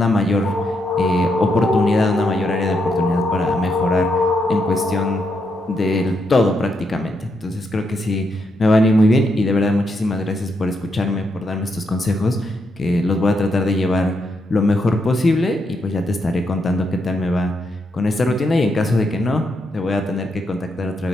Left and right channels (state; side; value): normal; both; correlation 0.80